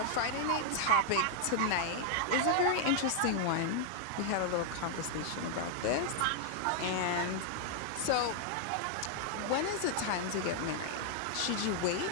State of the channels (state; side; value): different; both; correlation -0.01